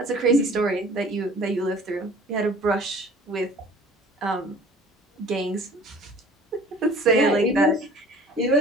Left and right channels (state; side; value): normal; both; correlation 0.48